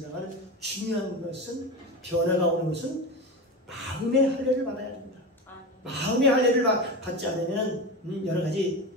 중요한 것은 변화가 오는 것은 마음의 할례를 받아야 됩니다. 마음의 할례를 받지 않으면 여러 가지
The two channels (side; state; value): both; normal; correlation 0.23